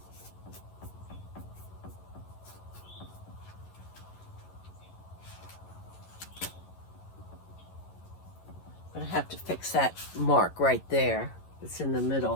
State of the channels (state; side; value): late; right; 11 ms